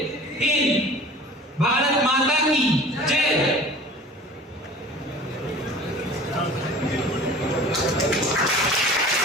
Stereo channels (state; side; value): normal; both; correlation 0.43